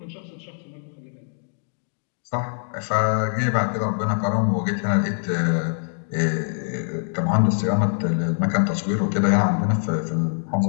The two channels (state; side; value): silent; right; 63 dB below the other